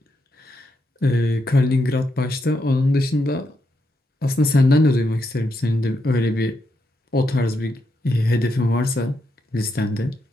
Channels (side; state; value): both; normal; correlation 0.82